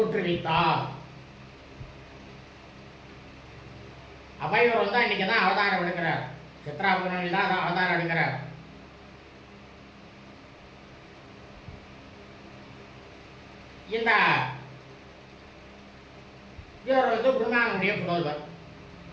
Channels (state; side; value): identical; both; correlation 1.00